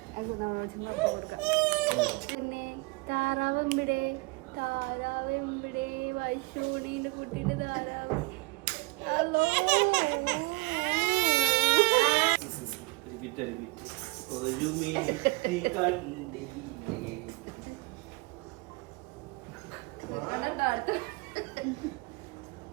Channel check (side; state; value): left; quieter; 26.2 dB